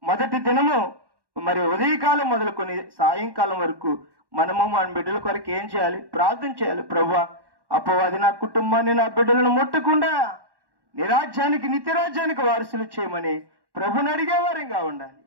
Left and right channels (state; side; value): late; left; 1.1 ms